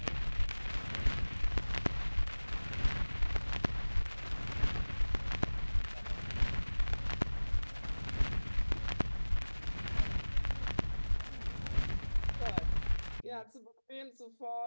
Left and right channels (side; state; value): both; inverted; correlation -1.00